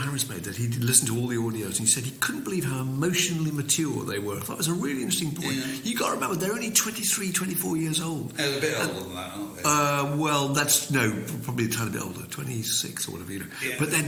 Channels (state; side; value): identical; both; correlation 1.00